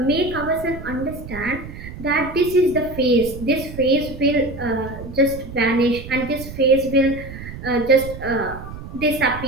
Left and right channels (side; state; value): right; noise; rumble, 12 dB below the sound